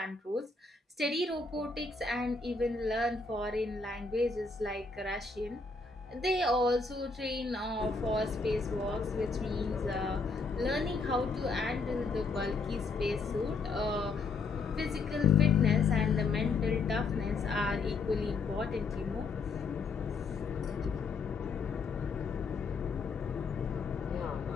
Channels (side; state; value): right; quieter; 4.1 dB